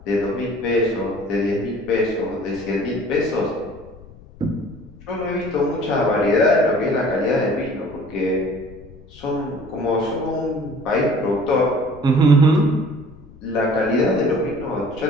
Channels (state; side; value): noise; left; rumble, 21 dB below the sound